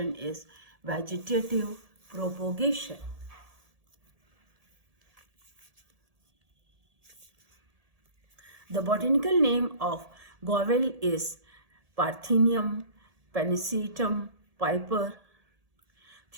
is vegetative propagation. The botanical name of Govel is Parthenium pennisetum Piper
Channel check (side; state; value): left; late; 1.7 ms